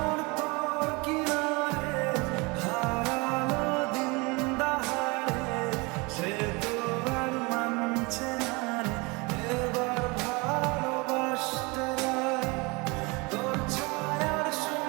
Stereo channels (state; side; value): quieter; left; 27.0 dB